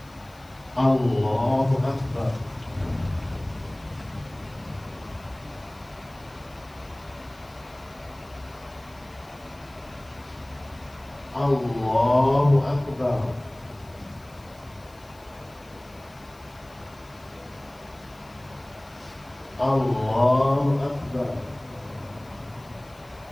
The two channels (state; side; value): noise; left; hiss, 28 dB below the sound